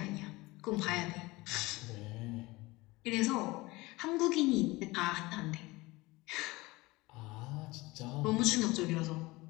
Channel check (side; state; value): right; quieter; 21.6 dB